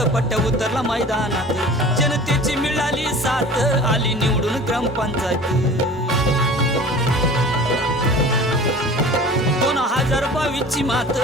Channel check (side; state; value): both; normal; correlation 0.41